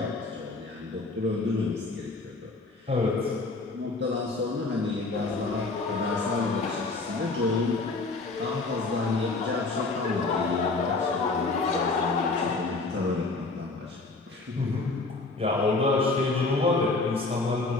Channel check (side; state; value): right; quieter; 3.5 dB